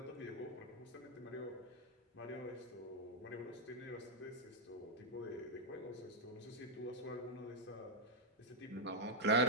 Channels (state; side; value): normal; both; correlation -0.03